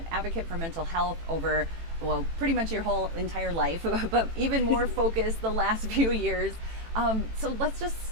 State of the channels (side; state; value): left; late; 18 ms